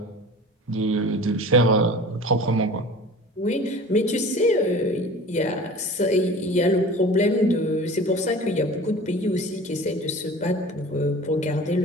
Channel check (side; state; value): both; normal; correlation 0.40